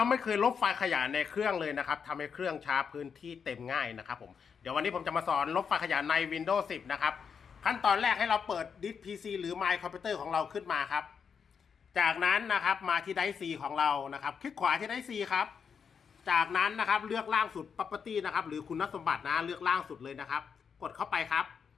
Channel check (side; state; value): right; quieter; 6.5 dB